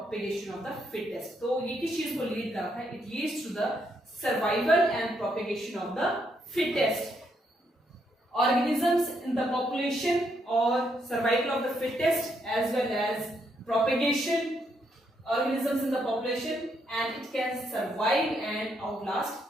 of the fittest. तो ये किस चीज को लीड करता है? It leads to the survival and propagation of the fittest. Organisms in the population or survival of the fittest as well as propagation organisms in the population, and it can survive and outlast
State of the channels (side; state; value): both; normal; correlation 0.76